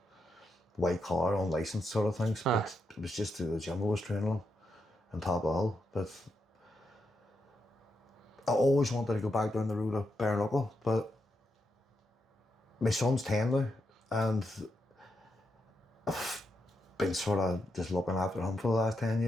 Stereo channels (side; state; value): both; normal; correlation 0.83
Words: white collar, unlicensed sort of things, but it was just through the gym I was training on top of all. But I always wanted to go back down the road of bare knuckle, but my son's 10 now, and I've been sort of just looking after him for the last 10